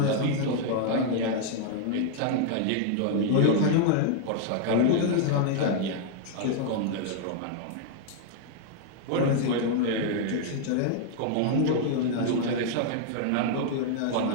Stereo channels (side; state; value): both; different; correlation 0.00